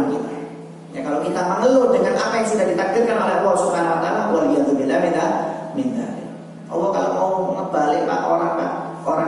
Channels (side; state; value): both; identical; correlation 1.00